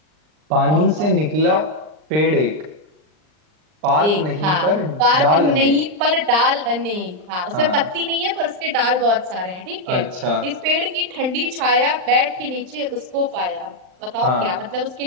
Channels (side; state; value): left; late; 39 ms